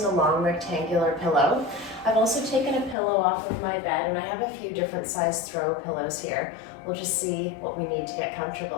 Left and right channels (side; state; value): right; drops out; at 3.0 s